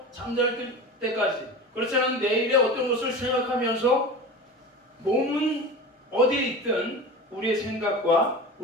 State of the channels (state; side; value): normal; both; correlation 0.31